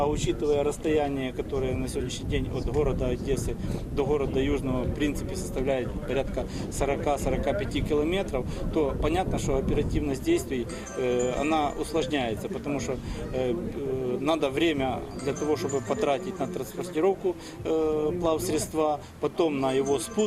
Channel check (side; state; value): both; identical; correlation 1.00